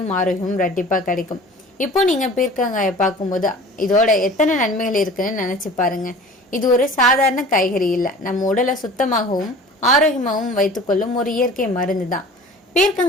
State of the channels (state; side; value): normal; both; correlation 0.43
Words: ஆரோக்கியமும் ரெட்டிப்பா கிடைக்கும். இப்போ நீங்க பீர்க்கங்காயை பார்க்கும்போது இதோட எத்தனை நன்மைகள் இருக்குன்னு நினைச்சு பாருங்க. இது ஒரு சாதாரண காய்கறி இல்ல, நம்ம உடலை சுத்தமாகவும் ஆரோக்கியமாகவும் வைத்துக்கொள்ளும் ஒரு இயற்கை மருந்து தான்.